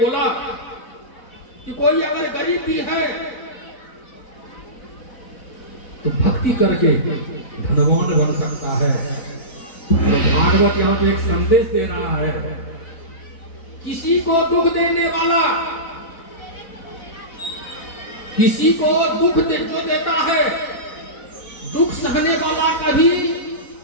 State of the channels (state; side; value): late; right; 4.0 ms